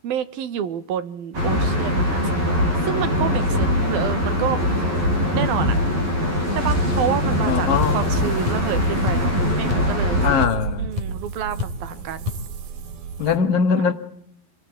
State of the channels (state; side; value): late; left; 11 ms